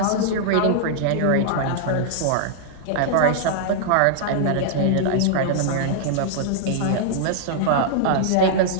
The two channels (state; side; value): different; both; correlation -0.01